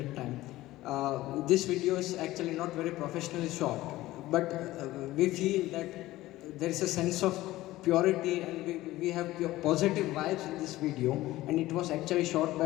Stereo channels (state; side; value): quieter; right; 16.8 dB